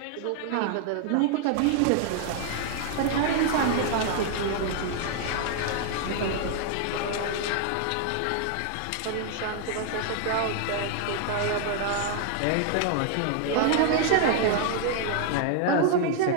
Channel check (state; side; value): different; both; correlation 0.00